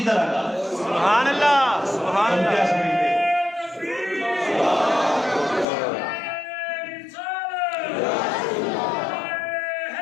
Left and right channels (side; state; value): right; drops out; at 5.7 s